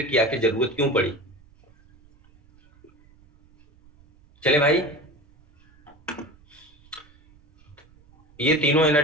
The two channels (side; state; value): right; noise; rumble, 29 dB below the sound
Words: की आखिर जरूरत क्यों पड़ी। चले भाई, ये तीनों